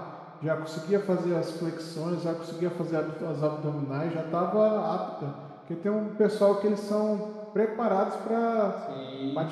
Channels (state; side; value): identical; both; correlation 1.00